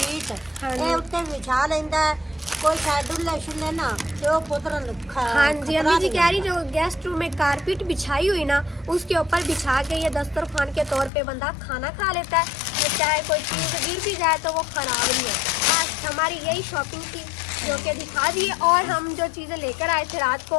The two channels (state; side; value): drops out; right; at 11.1 s